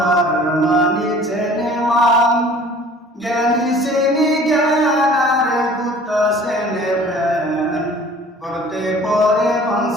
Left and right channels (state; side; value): normal; both; correlation 0.49